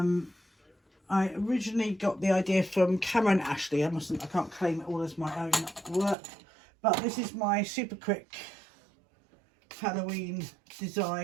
originally got the idea from Cameron Ashley. I can't claim it all as my own work, but this is my super quick Halloween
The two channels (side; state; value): left; drops out; at 6.2 s